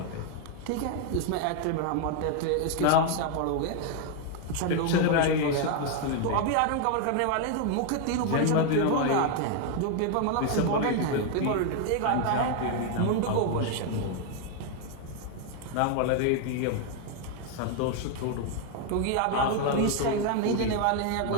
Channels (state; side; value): different; both; correlation 0.00